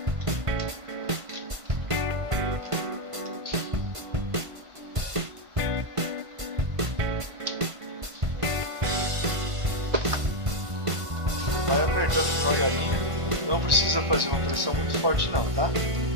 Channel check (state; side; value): late; left; 1.5 ms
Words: Vai apertando devagarinho, não precisa fazer uma pressão muito forte não, tá?